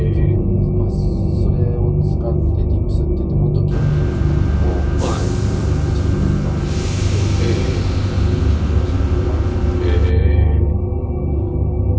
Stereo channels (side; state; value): both; identical; correlation 1.00